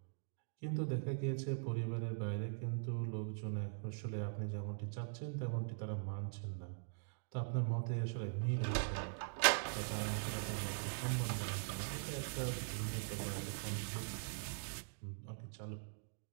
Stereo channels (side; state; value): left; silent; digital silence